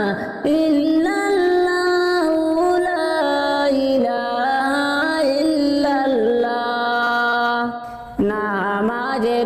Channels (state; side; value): identical; both; correlation 1.00